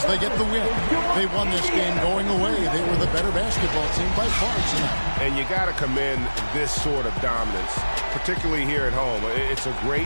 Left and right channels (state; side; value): inverted; both; correlation -1.00